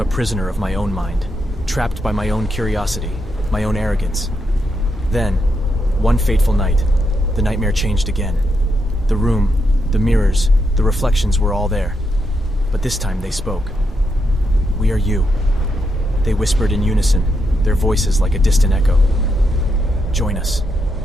prisoner of my own mind, trapped by my own curiosity, my own arrogance. Then, one fateful night, the nightmare changed again. The room, the mirrors, the reflections were all there. But this time they spoke. "We are you." They whispered in unison, their voices like a distant echo. "Join us."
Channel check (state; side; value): normal; both; correlation 0.81